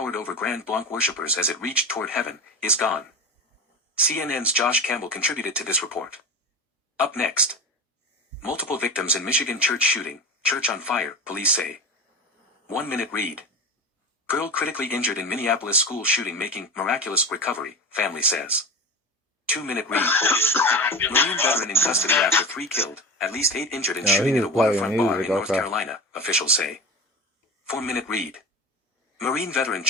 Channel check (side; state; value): both; normal; correlation 0.28